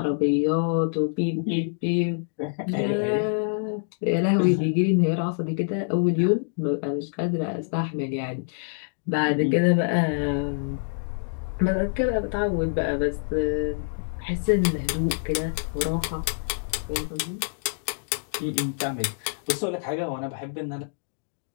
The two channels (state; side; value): silent; right; digital silence